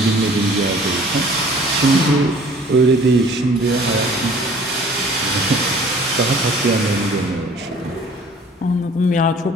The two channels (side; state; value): both; normal; correlation 0.51